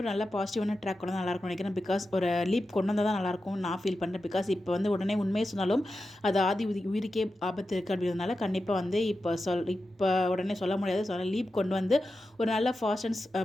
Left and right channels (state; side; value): normal; both; correlation 0.91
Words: ஒரு நல்ல பாசிட்டிவான ட்ராக் கொண்டு நல்லா இருக்கும் நினைக்கிறேன். பிகாஸ் ஒரு லீப் கொண்டு வந்தால் தான் நல்லாயிருக்கும் நான் ஃபீல் பண்ணுறேன். பிகாஸ் இப்போ வந்து உடனே உண்மையை சொன்னாலும் அது ஆதி உயிருக்கே ஆபத்து இருக்குது அப்படின்றதுனால கண்டிப்பாக வந்து இப்போ உடனே சொல்ல முடியாது. ஸோ லீப் கொண்டு வந்து ஒரு நல்ல ஃபாஸ்ட் அண்ட்